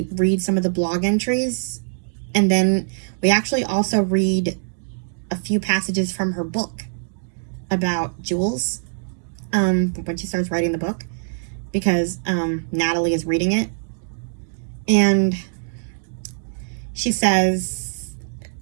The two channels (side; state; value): left; silent; digital silence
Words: read some of the blog entries, and then we actually also read a few passages from her book about Jules, when she starts writing the book, because Natalie is reading it. And she says,